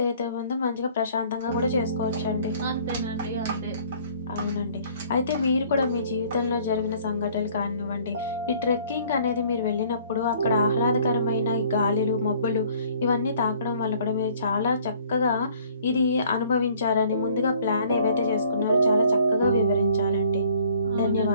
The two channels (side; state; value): both; inverted; correlation -0.57